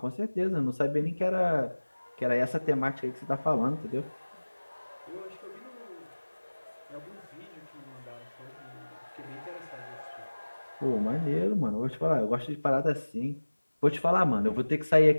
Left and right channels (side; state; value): both; inverted; correlation -1.00